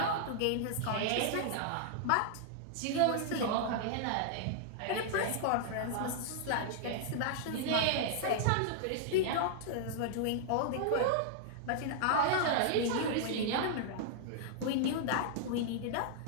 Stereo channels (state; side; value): different; both; correlation -0.01